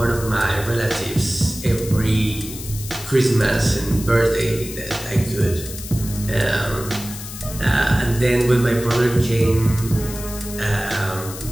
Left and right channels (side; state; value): left; noise; hiss, 11 dB below the sound